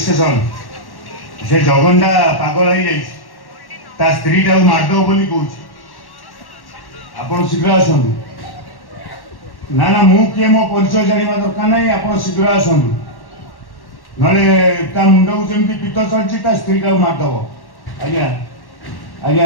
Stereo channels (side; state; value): right; late; 1.1 ms